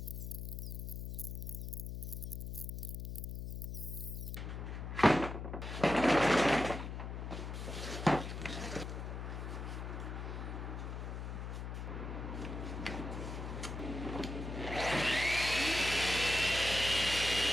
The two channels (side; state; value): left; noise; hum, 5 dB below the sound